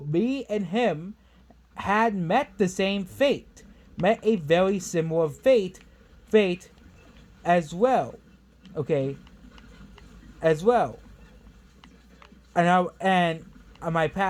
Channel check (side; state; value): both; identical; correlation 1.00